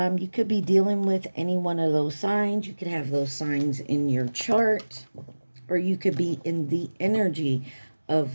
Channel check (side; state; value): both; inverted; correlation -1.00